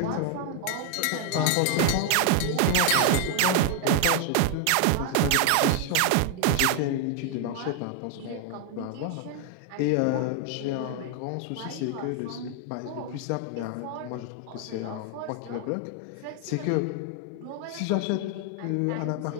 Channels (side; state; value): both; different; correlation 0.00